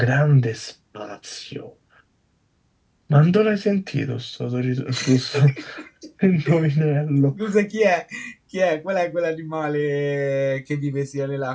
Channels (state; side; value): identical; both; correlation 1.00